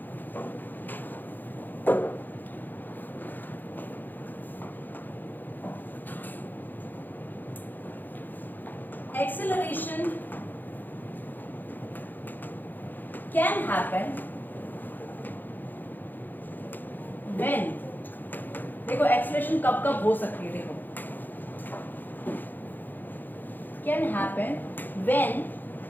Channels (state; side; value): late; right; 0.088 ms